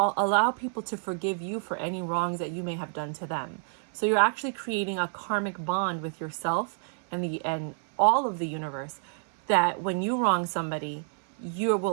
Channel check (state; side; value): silent; left; 59 dB below the other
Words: people to forgive you for any wrongs that you may have done to them. So you're actually creating a karmic bond with yourself and all of the universe, that when you wrong somebody, you